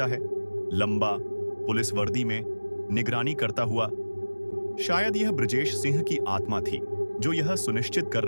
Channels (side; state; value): both; inverted; correlation -1.00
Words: है, लंबा, पुलिस वर्दी में, निगरानी करता हुआ। शायद यह ब्रजेश सिंह की आत्मा थी जो यह सुनिश्चित कर